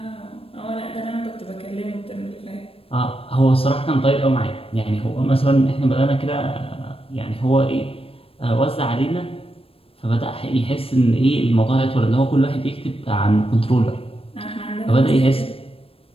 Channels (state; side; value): late; right; 0.28 ms